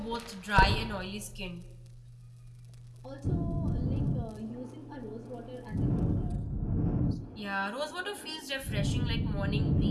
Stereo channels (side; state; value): both; identical; correlation 1.00